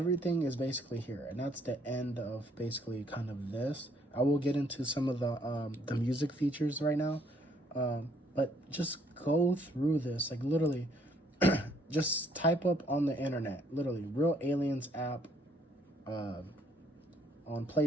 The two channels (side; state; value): both; normal; correlation 0.66